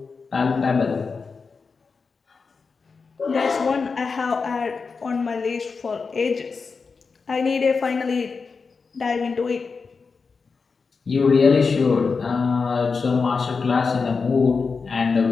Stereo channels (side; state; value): right; quieter; 4.9 dB